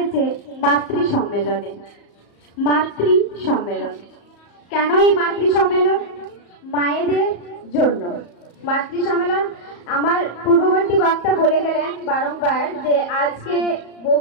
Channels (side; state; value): right; late; 34 ms